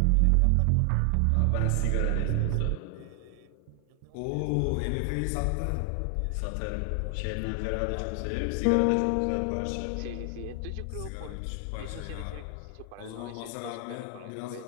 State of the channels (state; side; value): different; both; correlation 0.00